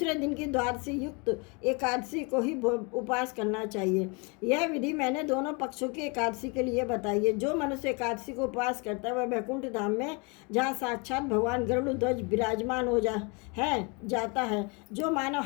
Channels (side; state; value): right; quieter; 31.4 dB